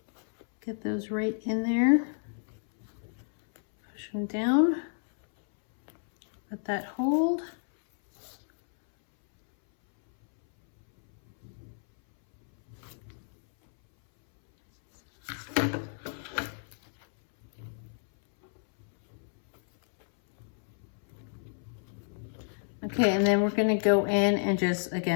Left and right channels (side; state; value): right; silent; 58 dB below the other